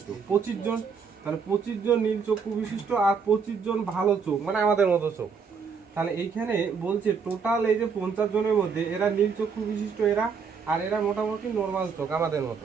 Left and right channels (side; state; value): left; quieter; 5.8 dB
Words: 25 জন। তাহলে 25 জন নীল চক্ষু বিশিষ্ট আর 25 জন ভালো চোখ, মানে আমাদের মতো চোখ। তাহলে এইখানে বলছে টোটাল এই যে 50 জনের মধ্যে এরা নীল চক্ষু বিশিষ্ট, এরা আর এরা মোটামুটি নর্মাল চোখ আমাদের মতো।